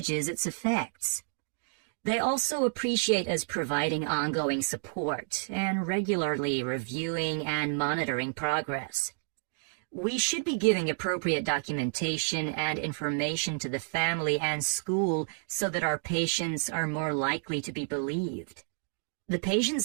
its effects. They also appreciate us providing ongoing support and regularly reviewing and monitoring progress. We should be giving appropriate documentation and information to the family and school so that our patients are more likely to be believed. The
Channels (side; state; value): left; silent; digital silence